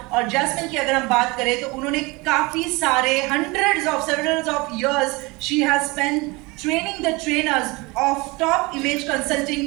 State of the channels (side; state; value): left; quieter; 24.9 dB